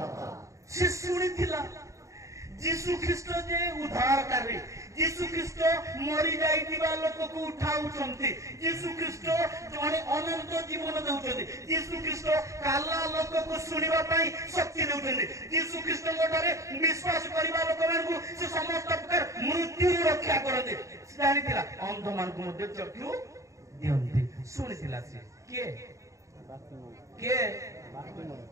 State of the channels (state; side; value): late; left; 0.15 ms